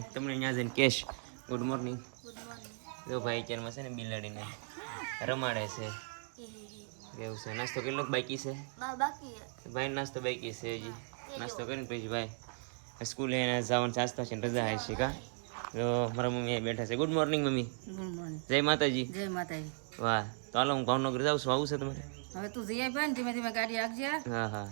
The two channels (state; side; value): silent; left; 53 dB below the other